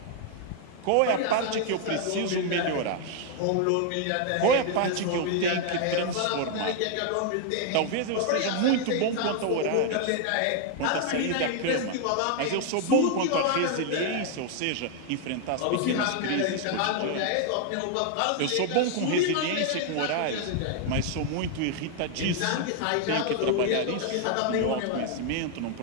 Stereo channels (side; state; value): both; different; correlation 0.00